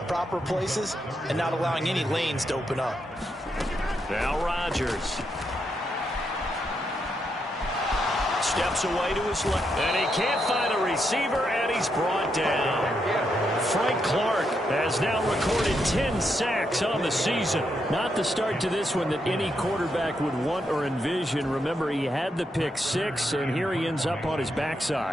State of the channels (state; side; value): normal; both; correlation 0.81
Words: proper places and not allowing any lanes to open up. Now Rodgers. Steps away to his left. And he can't find a receiver, and he's brought down. Frank Clark has now recorded 10 sacks on the season. Not the start to this one that any quarterback would want or envision. Remember, he had the pick 6, and here he ends up on his